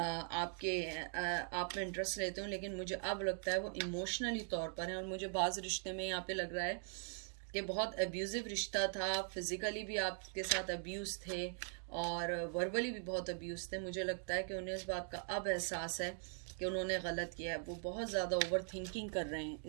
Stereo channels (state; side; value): silent; left; 50 dB below the other